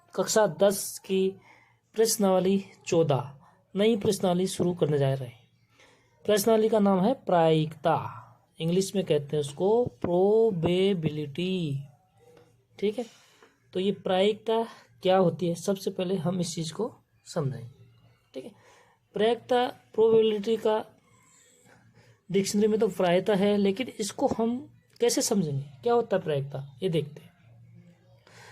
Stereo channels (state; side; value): identical; both; correlation 1.00